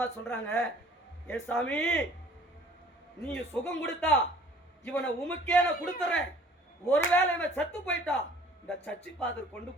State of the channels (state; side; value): normal; both; correlation 0.53